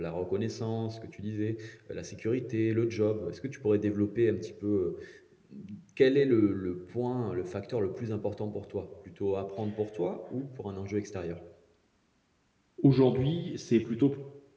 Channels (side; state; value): both; identical; correlation 1.00